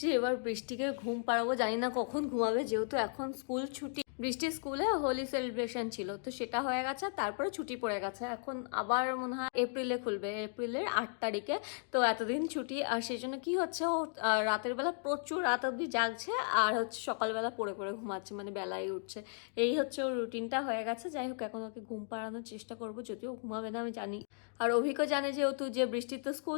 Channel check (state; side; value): silent; right; 54 dB below the other